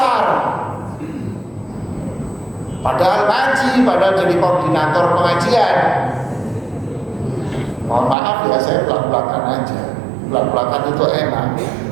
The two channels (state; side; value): drops out; left; at 8.2 s